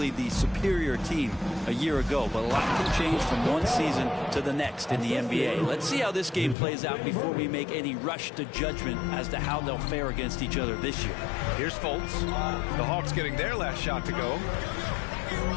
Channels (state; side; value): drops out; right; at 6.6 s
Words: the superior team a year ago, but a lot can change from one season to the next in the NBA. Let's see how this game plays out before we make any rush to judgment as to how they'll fare against each other this year. Here's Fultz. The Hawks getting their last shot to go.